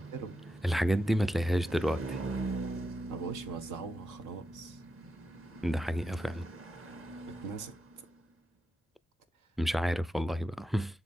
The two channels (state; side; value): normal; both; correlation 0.87